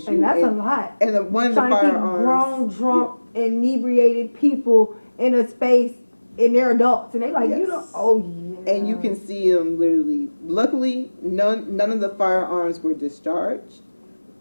And that's a lot. And one of the Trying to keep firearms, grown, drunk, inebriated people in a space, and they're adults, and they like, Yes. you know, oh yeah. and you can see them literally. Luckily, none of the firearms were discharged,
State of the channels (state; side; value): inverted; both; correlation -1.00